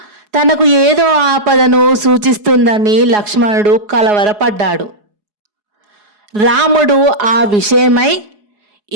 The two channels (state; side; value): late; left; 4.8 ms